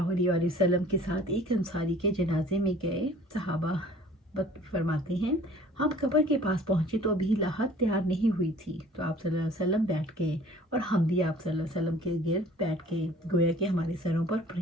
علیہ وآلہ وسلم کے ساتھ ایک انصاری کے جنازے میں گئے۔ صحابہ فرماتے ہیں ہم قبر کے پاس پہنچے تو ابھی لاحت تیار نہیں ہوئی تھی، تو آپ صلی اللہ علیہ وسلم بیٹھ گئے اور ہم بھی آپ صلی اللہ علیہ وسلم کے گرد بیٹھ گئے، گویا کہ ہمارے سروں پر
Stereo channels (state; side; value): normal; both; correlation 0.50